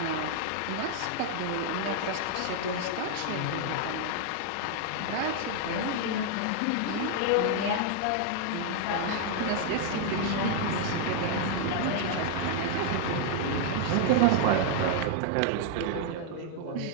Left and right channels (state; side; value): different; both; correlation 0.00